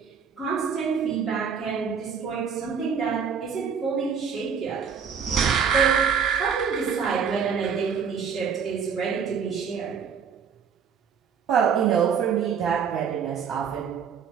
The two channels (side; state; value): left; quieter; 6.8 dB